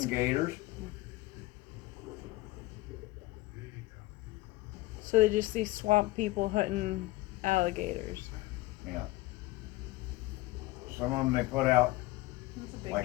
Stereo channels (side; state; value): right; quieter; 19.2 dB